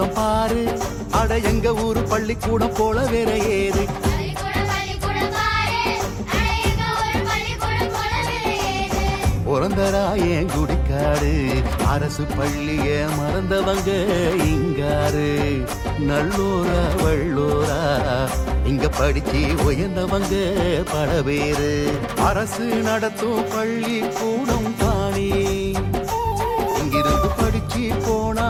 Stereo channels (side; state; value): both; identical; correlation 1.00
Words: பாரு, அட எங்க ஊரு பள்ளிக்கூடம் போல வேற ஏது. பிறந்தராயன் குடிக்காடு, அரசு பள்ளிய மறந்தவங்க இங்காரு. நல்லூரா வள்ளூரா இங்க படிச்சு உயர்ந்தவங்க பல பேரு. அரசு நடத்தும் பள்ளி கூடம் தானே, இங்கிருந்து படிச்சு போனா